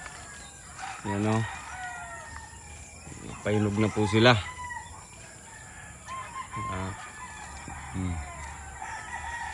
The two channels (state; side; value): identical; both; correlation 1.00